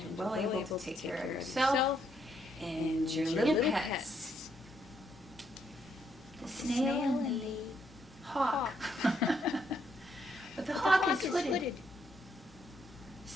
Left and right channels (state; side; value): normal; both; correlation 0.74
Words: well able to take care of yourself and your little pets. The snail and the hawk. But the hawk is hooded.